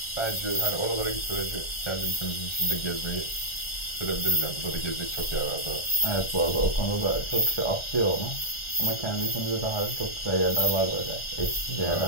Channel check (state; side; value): late; right; 1.4 ms